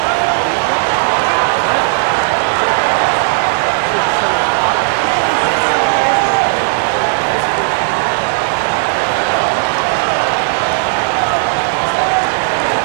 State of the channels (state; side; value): silent; left; digital silence